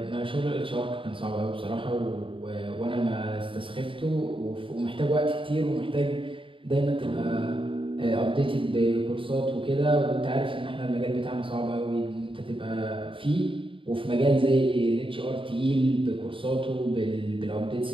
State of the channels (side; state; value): left; late; 0.25 ms